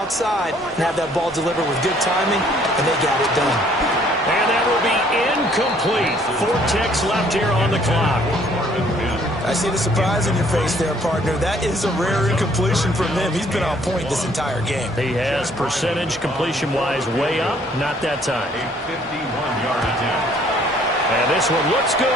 and have that ball delivered with good timing, and they got it done. And that will be incomplete. 4 ticks left here on the clock. I see the surprise in your face there, partner. That is a rare incompletion from him. He's been on point this entire game. He has percentage completion-wise way up. Not that time. A 51-yard attempt. And this one looks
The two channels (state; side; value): normal; both; correlation 0.61